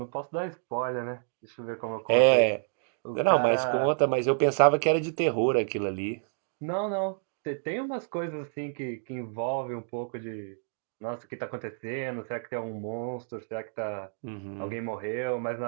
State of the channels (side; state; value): left; silent; digital silence